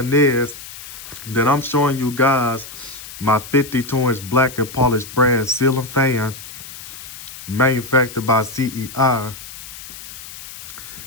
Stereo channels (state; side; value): noise; left; hiss, 13 dB below the sound